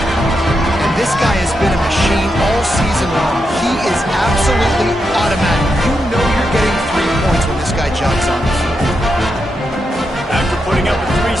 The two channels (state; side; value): normal; both; correlation 0.85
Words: this guy has been a machine all season long. He is absolutely automatic. You know you're getting 3 points when this guy jogs on the field. After putting up a